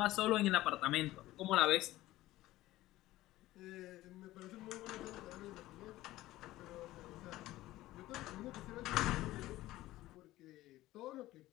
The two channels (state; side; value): quieter; right; 16.5 dB